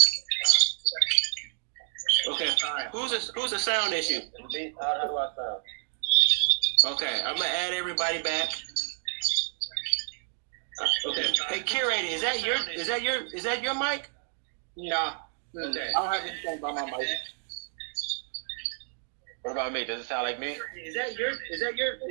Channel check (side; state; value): left; silent; 58 dB below the other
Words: Okay, alright. Who's the sound issue? Is it me? How do I sound? Okay, I'm gonna add everybody back. Okay. Hey, curator, is that your mic? No. Okay. I don't have anything by my mic. What about me? Does it sound like me? Is